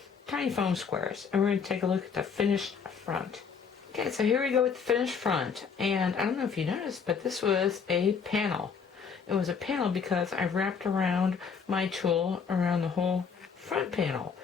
tiny foam squares. And we're going to take a look at the finished front. Okay, so here we go with the finished front. And I don't know if you noticed, but this was a panel. It was a panel because I wrapped around my tool around the whole front panel.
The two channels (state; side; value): quieter; right; 6.1 dB